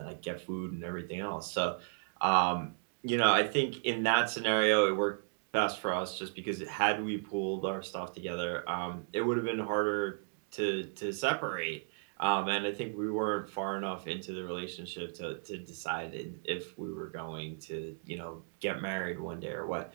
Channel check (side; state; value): left; silent; digital silence